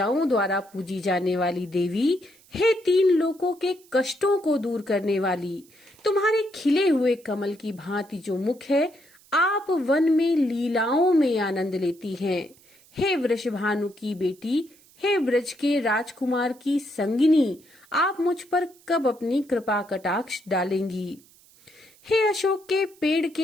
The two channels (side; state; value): right; noise; hiss, 28 dB below the sound